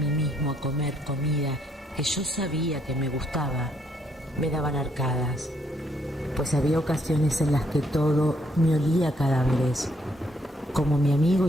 mismo a comer comida que yo sabía que me gustaba, me daban arcadas, pues había ocasiones en las que todo me olía a cadáveres. Como mi amigo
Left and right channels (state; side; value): normal; both; correlation 0.71